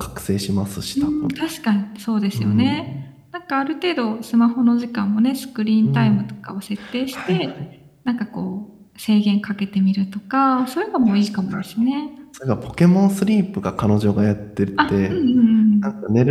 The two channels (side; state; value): both; identical; correlation 1.00